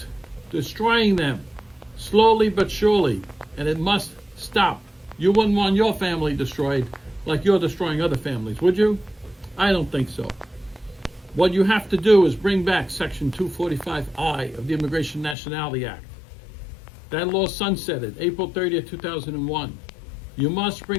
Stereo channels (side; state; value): right; drops out; at 15.4 s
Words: destroying them, slowly but surely, and it must stop. You wouldn't want your family destroyed like you're destroying other families, would you? I don't think so. What you have to do is bring back Section 245I of the Immigration Nationality Act. That law sunsetted April 30th, 2001. You must